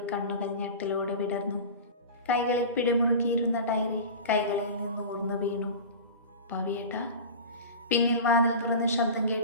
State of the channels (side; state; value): both; inverted; correlation -0.32